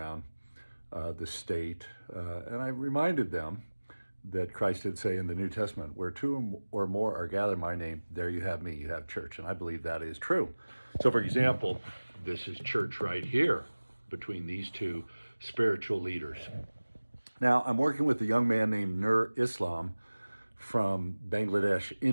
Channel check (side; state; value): both; inverted; correlation -1.00